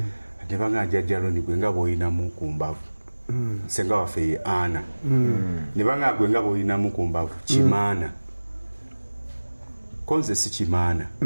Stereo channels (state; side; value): inverted; both; correlation -1.00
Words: ne banga jjajja Loni gwe nga bw'olinamu ku mbavu senga waffe ye Ana ne banga gwe nga bw'olinamu ku mbavu Kimaana konze si Kimaana